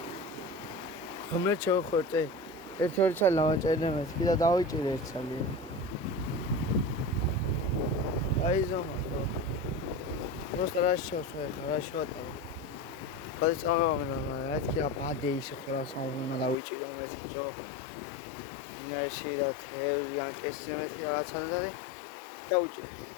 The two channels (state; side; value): drops out; right; at 16.6 s